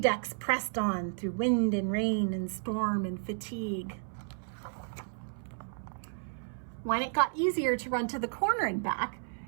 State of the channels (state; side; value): silent; left; 56 dB below the other